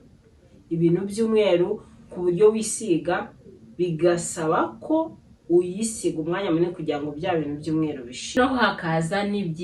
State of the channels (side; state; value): both; identical; correlation 1.00